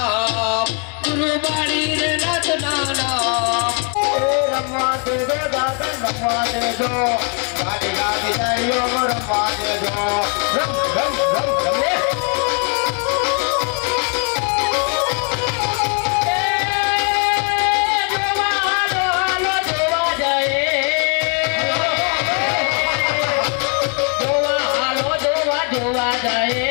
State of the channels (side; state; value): right; quieter; 38.7 dB